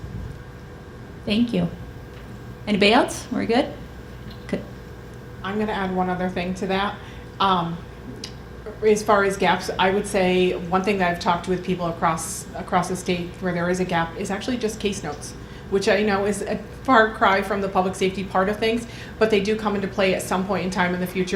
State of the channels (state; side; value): identical; both; correlation 1.00